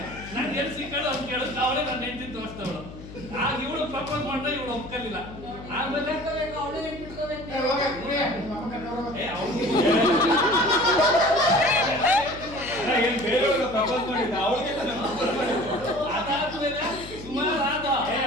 ನಾನು ಎಲ್ಲಿ ಸಿಕ್ಕಳು ಅಂತ ಕೇಳಿದ್ರೆ ಅವಳೇ ನನ್ನ ಹೆಂಡತಿ ತೋರಿಸ್ತವಳು. ಆಗ ಇವಳು ಪ್ರಪೋಸ್ ಮಾಡಿದ್ರೆ ಇವಳು ಒಪ್ಕಲಿಲ್ಲ. ಆಮೇಲೆ ಅದಾದ್ಮೇಲೆ ಸುಮಾರು ಆದ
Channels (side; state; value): left; noise; hum, 14 dB below the sound